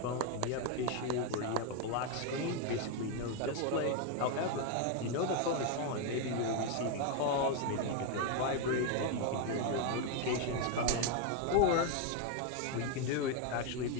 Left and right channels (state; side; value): different; both; correlation 0.01